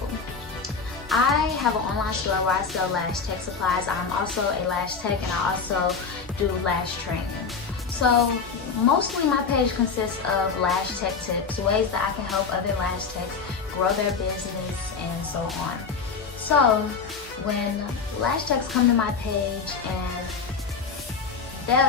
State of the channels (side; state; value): right; quieter; 5.2 dB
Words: I have an online store where I sell lash tech supplies. I'm also a lash tech, and I also do lash training. So mostly my page consists of lash tech tips, ways that I can help other lash techs grow their business and so on. So when lash techs come to my page,